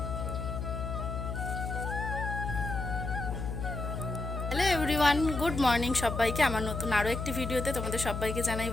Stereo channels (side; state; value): left; noise; hum, 4 dB below the sound